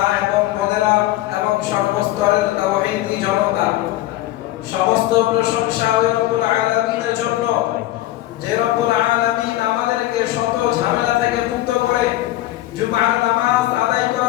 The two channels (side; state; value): right; quieter; 15.6 dB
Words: এবং বোনেরা এবং সর্বস্তরের তাওহীদি জনতা, সমস্ত প্রশংসা ওই রব্বুল আলামিনের জন্য যে রব্বুল আলামিন আমাদেরকে শত ঝামেলা থেকে মুক্ত করে জুমার নামাজ আদায়